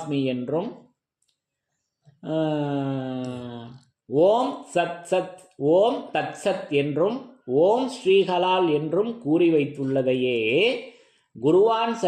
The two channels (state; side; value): identical; both; correlation 1.00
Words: என்றும் ஓம் சத் சத் ஓம் தத் சத் என்றும் ஓம் ஸ்ரீஹலால் என்றும் கூறி வைத்துள்ளதையே குருவான்